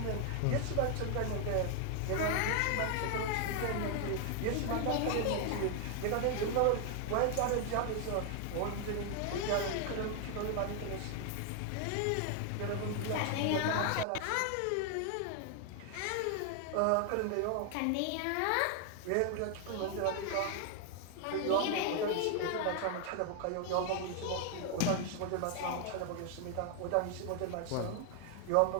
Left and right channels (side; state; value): both; different; correlation 0.00